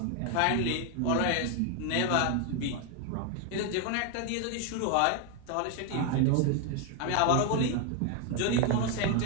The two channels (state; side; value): different; both; correlation 0.01